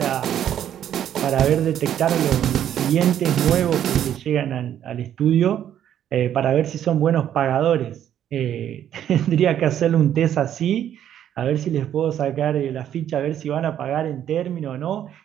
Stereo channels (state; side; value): quieter; left; 10.4 dB